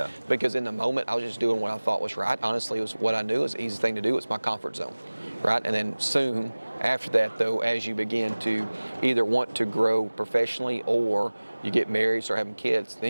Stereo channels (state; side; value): inverted; both; correlation -1.00